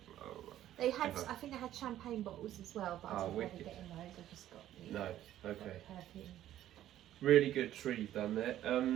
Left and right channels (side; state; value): left; quieter; 12.6 dB